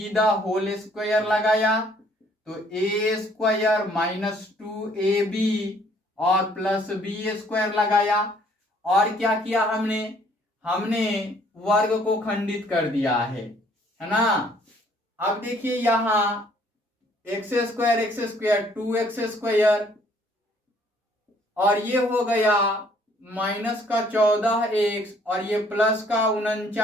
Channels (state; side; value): normal; both; correlation 0.62